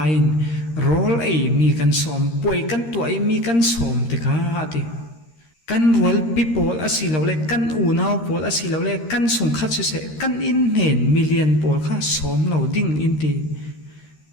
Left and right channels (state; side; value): late; right; 13 ms